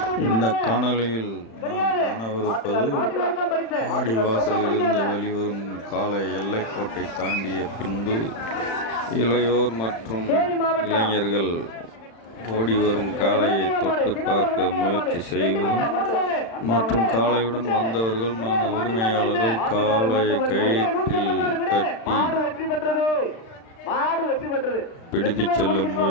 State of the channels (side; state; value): right; late; 35 ms